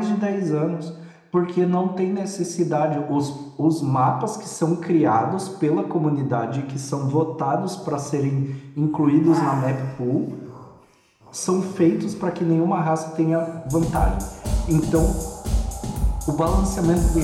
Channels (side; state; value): both; identical; correlation 1.00